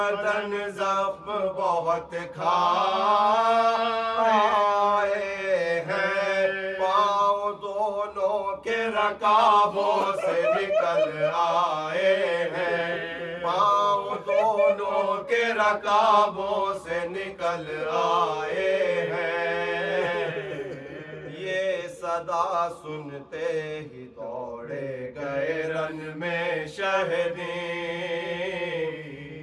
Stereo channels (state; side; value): identical; both; correlation 1.00